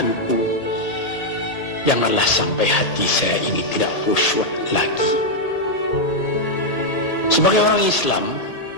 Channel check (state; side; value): late; right; 1.8 ms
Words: janganlah sampai hati saya ini tidak khusyuk lagi. Sebagai orang Islam,